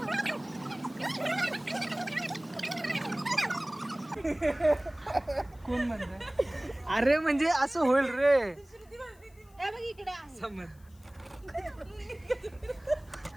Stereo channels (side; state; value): left; noise; hiss, 30 dB below the sound